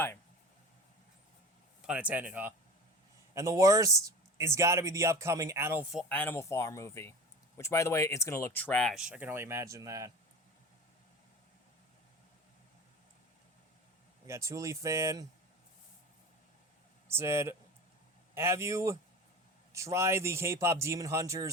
Pun intended, huh? And the worst is gotta be the upcoming Animal Farm movie. Which, by the way, it's gonna look trash. I can only imagine that. We got Thule Fan. Said, have you tried the K-pop Demon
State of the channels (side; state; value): both; normal; correlation 0.34